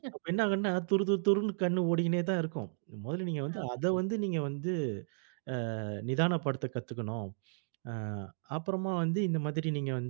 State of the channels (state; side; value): silent; left; digital silence